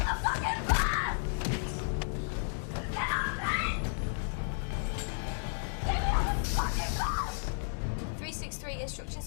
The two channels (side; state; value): right; silent; digital silence